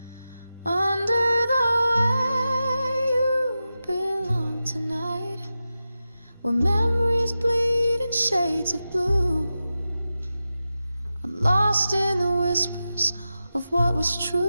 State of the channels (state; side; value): inverted; both; correlation -0.92